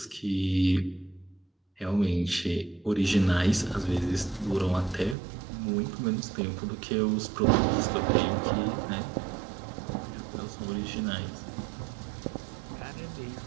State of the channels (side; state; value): left; drops out; at 5.2 s